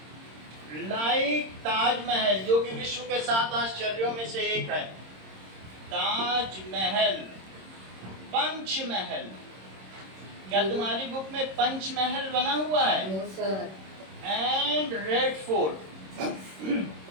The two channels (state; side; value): late; left; 26 ms